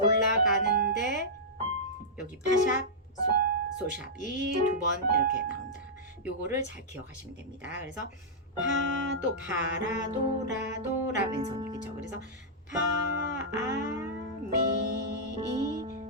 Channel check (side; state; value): both; normal; correlation -0.11